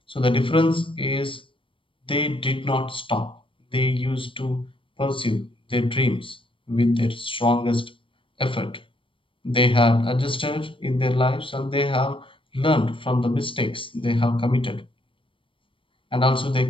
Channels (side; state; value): right; late; 0.25 ms